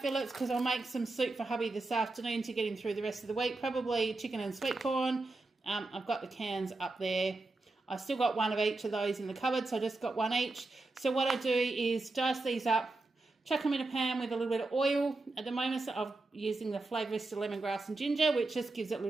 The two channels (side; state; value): left; quieter; 3.2 dB